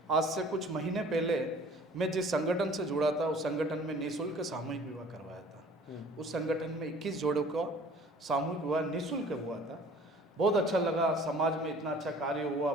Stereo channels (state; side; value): normal; both; correlation 0.50